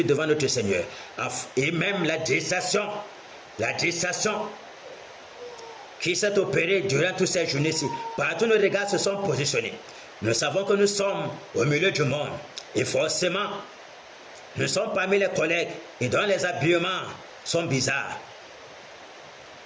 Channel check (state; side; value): identical; both; correlation 1.00